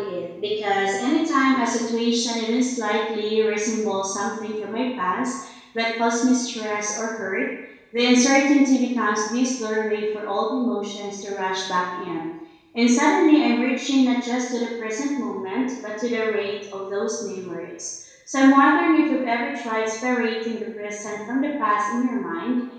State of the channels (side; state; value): both; identical; correlation 1.00